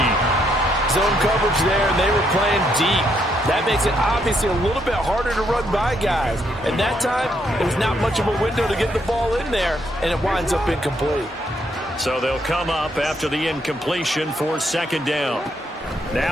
Zone coverage there, and they were playing deep. That makes it obviously a little bit harder to run by guys. And that time, there was not much of a window to get the ball in there, and it winds up incomplete. So they'll come up after the incompletion for 2nd down.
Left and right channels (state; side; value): normal; both; correlation 0.74